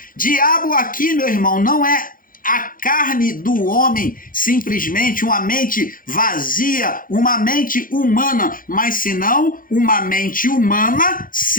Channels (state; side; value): late; right; 0.40 ms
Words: Diabo aqui, meu irmão, não é a carne do homem, simplesmente uma mente vazia, uma mente humana, mas senão uma mente humana